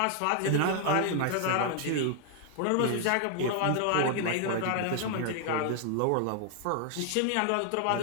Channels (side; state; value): both; different; correlation 0.00